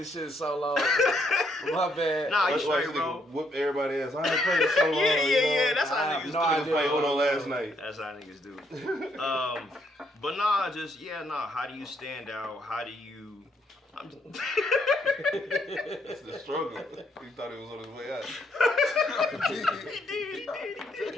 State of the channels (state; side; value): normal; both; correlation 0.73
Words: shit so long. My bad. Nah, you Watch straight, this bro. nigga whoop everybody ass. I ain't played it so long. Yeah. That's I how have niggas no do. idea. I played Uno last night. That's how niggas do. But how do you stand out? How do you? That's the struggle. He thought he was on his way out.